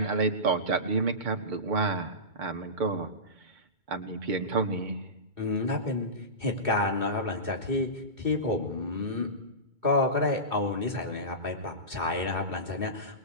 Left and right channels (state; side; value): late; left; 2.2 ms